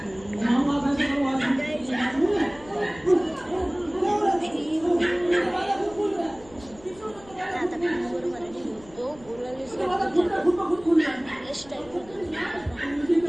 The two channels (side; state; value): left; noise; rumble, 23 dB below the sound